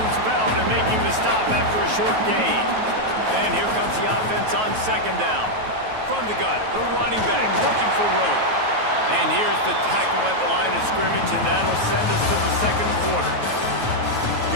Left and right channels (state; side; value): late; left; 9.3 ms